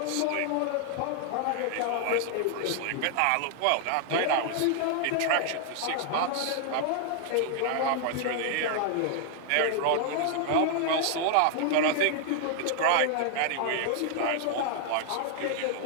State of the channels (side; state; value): both; different; correlation 0.00